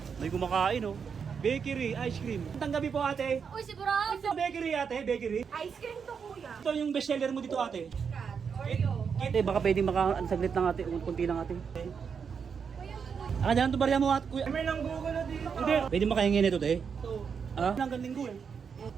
May kumakain oh. Bakery, ice cream. Magandang gabi po ate. Uy, sigurado! Bakery ate, bakery. Ice cream to, kuya. Ito yung best seller mo dito ate. Cat, Oreo. Ate, baka pwedeng saglit lang ate, kunti lang ate. Ah, dyan to barya mo ate. Kuya. May nang Google na dito. Hindi. Pwede makahingin ito te. Ah? Hanggang linggo eh.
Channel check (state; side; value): quieter; left; 6.4 dB